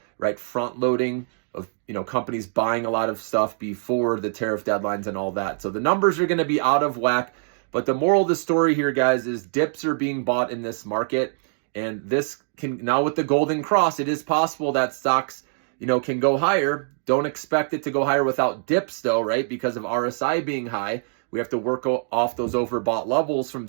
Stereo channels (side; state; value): left; silent; 60 dB below the other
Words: right, front loading of, companies buying a lot of stuff before the tariff deadlines and all that. So the numbers are going to be out of whack. But the moral of the story here, guys, is dips are being bought in this market. And this can, now with the golden cross, it is possible that stocks, can go higher. Don't expect it to go higher without dips though, right? Because of RSI being high, we have to work off those overbought levels from